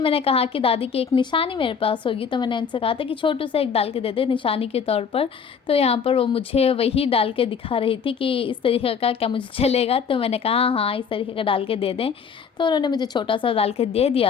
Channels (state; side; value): quieter; right; 6.5 dB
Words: मैंने कहा कि दादी की एक निशानी मेरे पास होगी, तो मैंने उनसे कहा था कि छोटू से एक डाल के दे दे निशानी के तौर पर। तो यहाँ पर वो मुझे वही डाल के दिखा रही थी कि इस तरीके का क्या मुझे चलेगा, तो मैंने कहा हाँ इस तरीके का डाल के दे दें। तो उन्होंने मुझे छोटा सा डाल के दे